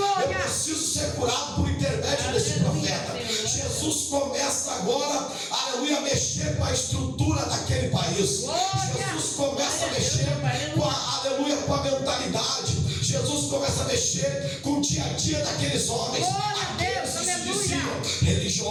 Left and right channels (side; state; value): both; identical; correlation 1.00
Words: Eu preciso ser curado por intermédio desse profeta. Jesus começa agora, aleluia, a mexer com a estrutura daquele país. Jesus começa a mexer com a, aleluia, com a mentalidade. Jesus começa a mexer com o dia a dia daqueles homens. Aqueles que se diziam